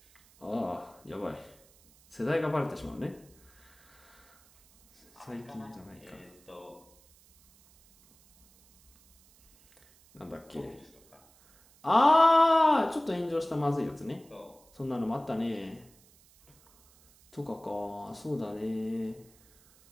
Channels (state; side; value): noise; right; hiss, 29 dB below the sound